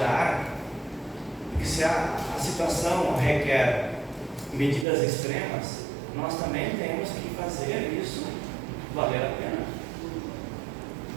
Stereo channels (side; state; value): left; drops out; at 4.9 s